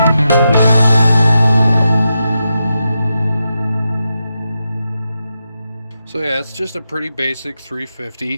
So yeah, it's just a pretty basic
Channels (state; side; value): inverted; both; correlation -0.87